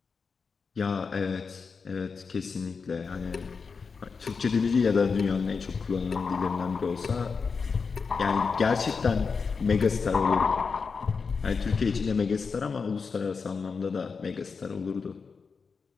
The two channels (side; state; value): right; quieter; 5.2 dB